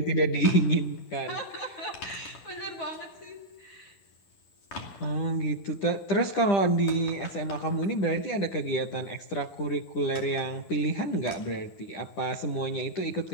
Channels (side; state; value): right; late; 10 ms